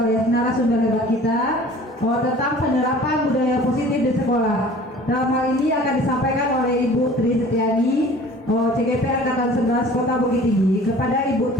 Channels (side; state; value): both; normal; correlation 0.47